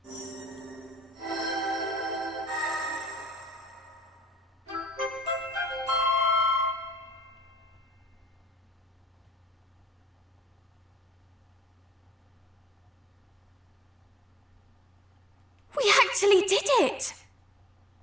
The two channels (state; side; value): normal; both; correlation 0.67